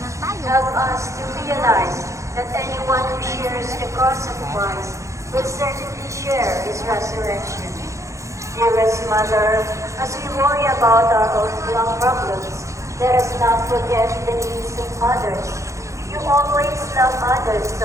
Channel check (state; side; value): late; left; 0.15 ms